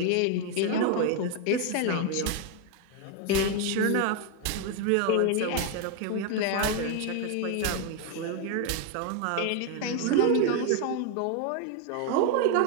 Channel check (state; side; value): different; both; correlation 0.01